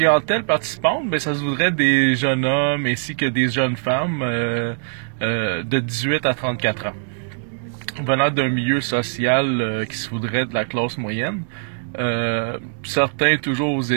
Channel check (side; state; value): left; silent; digital silence